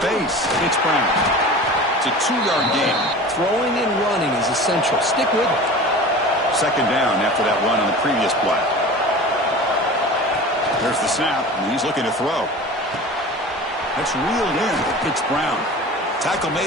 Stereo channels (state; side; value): normal; both; correlation 0.37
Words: It's Brown. It's a 2-yard gain. Throwing and running is essential. Stick with it. Second down after that run on the previous play. There's the snap, and he's looking to throw. That's reeled in. It's Brown. Tackle